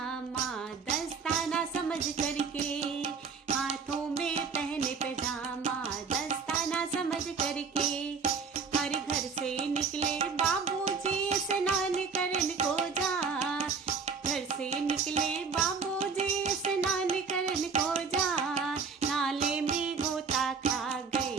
दस्ताना समझ करके, हाथों में पहने पैजामा दस्ताना समझ करके, हर घर से निकले बाबूजी स्नान करन को जा, घर से निकले बाबूजी स्नान करन को जा, नाले में गोता खा गए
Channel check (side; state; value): left; quieter; 5.4 dB